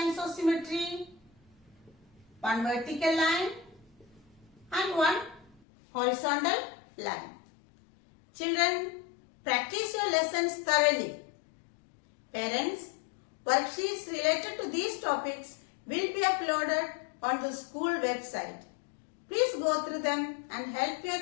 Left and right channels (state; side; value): drops out; right; at 5.6 s